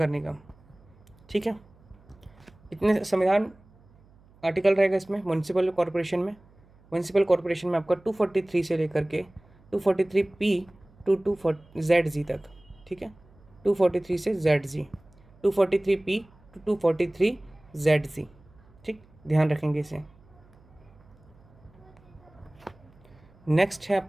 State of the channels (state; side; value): noise; right; hum, 28 dB below the sound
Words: निगम। ठीक है, इतने संविधान आर्टिकल रहेगा इसमें। म्युनिसिपल कॉरपोरेशन में आपका 243 से लेकर के 243P टू 240ZG तक। ठीक है, 243 से ZG, 243P टू 243ZG। ठीक, ध्यान रखेंगे इसे। नेक्स्ट है